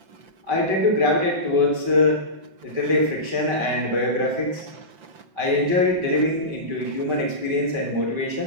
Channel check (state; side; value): late; left; 5.2 ms